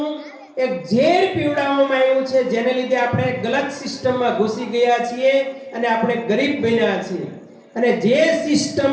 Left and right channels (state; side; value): identical; both; correlation 1.00